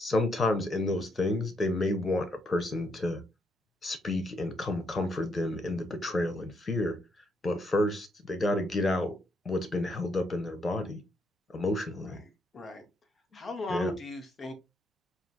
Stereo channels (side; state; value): both; normal; correlation 0.76